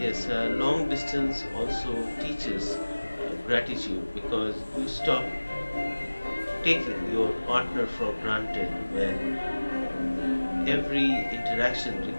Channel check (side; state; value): both; inverted; correlation -1.00